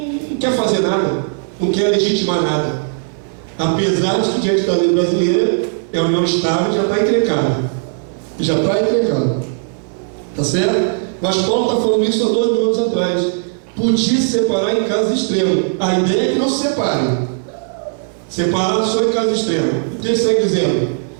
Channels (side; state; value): left; silent; 58 dB below the other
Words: não quer fazer nada, não quer legitimar nada. Apesar de que diante da lei brasileira é união estável, já está encrencada. Já está encrencada. Tá certo? Mas Paulo está falando isso há 2.000 anos atrás. Podia se separar em casos extremos. A ideia é que não se separem. Separado só em casos extremos. O texto segue dizendo: